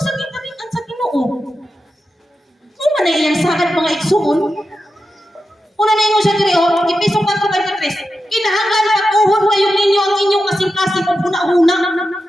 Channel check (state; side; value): normal; both; correlation 0.90